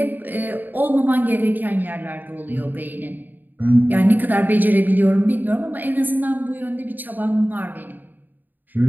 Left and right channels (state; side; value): late; left; 0.088 ms